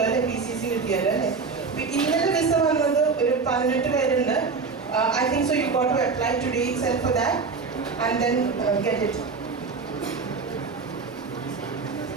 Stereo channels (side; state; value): left; quieter; 4.7 dB